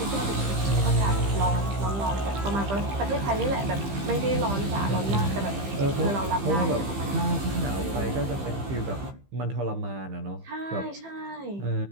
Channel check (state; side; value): late; left; 15 ms